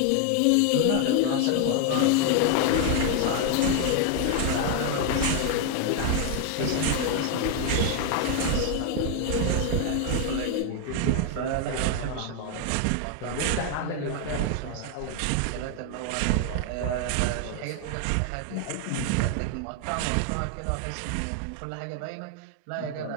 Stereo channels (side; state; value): both; different; correlation 0.00